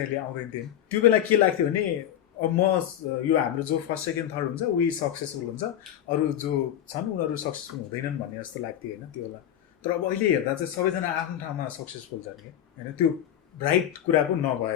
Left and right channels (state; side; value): quieter; right; 10.8 dB